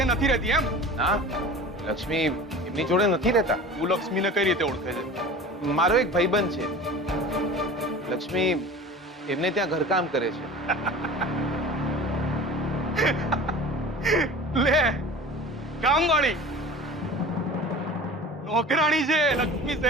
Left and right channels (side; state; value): both; normal; correlation 0.38